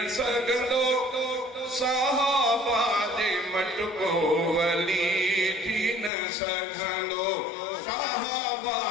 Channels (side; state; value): right; drops out; at 6.1 s